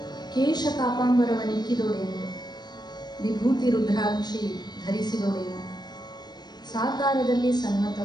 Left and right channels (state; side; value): late; right; 0.20 ms